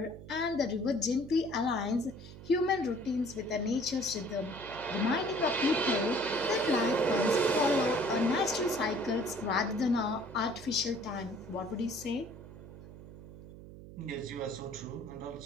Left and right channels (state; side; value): noise; right; hum, 15 dB below the sound